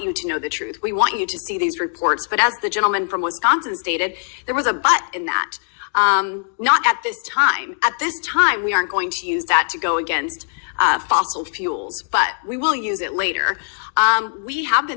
you to know the truth. We want you to see these reports. But as the gentleman from Wisconsin stated, there was a but in that. Not at this time. At this time, we aren't going to use that to go against fossil fuels, but we will use it later. We have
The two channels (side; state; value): right; silent; digital silence